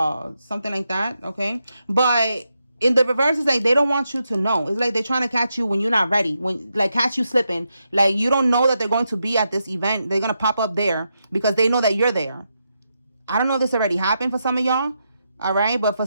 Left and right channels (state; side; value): inverted; both; correlation -0.84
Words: something like that, okay? But in the reverse, it's like they don't want you to know. It's like they're trying to catch you when you're not ready, when like catch you slipping. Like you don't know that they're going to be at this event. They're going to pop up there because they know that you're there. I don't know if this already happened for some of y'all, all right? But for